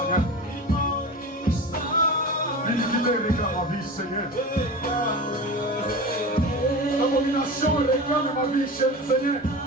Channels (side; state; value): both; normal; correlation 0.30